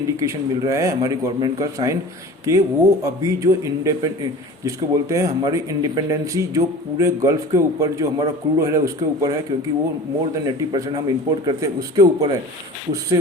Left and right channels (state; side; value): normal; both; correlation 0.39